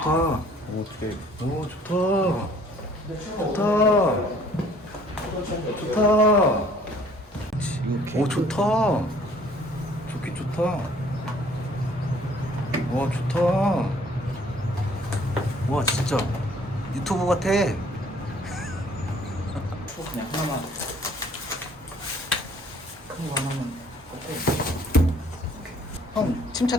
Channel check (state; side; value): normal; both; correlation 0.57